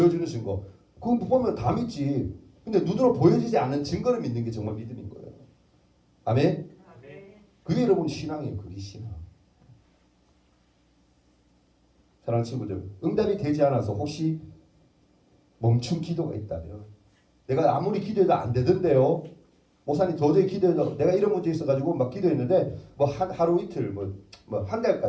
증거 그거 보면 다 믿지. 근데 눈으로 보여지지 않는 증거를 믿는 게 정말 믿음인 거예요. 아멘. 그게 여러분 신앙이에요. 그게 신앙. 사랑하는 친구들, 응답이 되지 않아서 혹시 멈춘 기도가 있다면 내가 아무리 기도해도 안 되던데요. 목사님 도저히 기도해도 내가 이런 문제 있어가지고 막 기도했는데 뭐 하루 이틀 뭐 한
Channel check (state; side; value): identical; both; correlation 1.00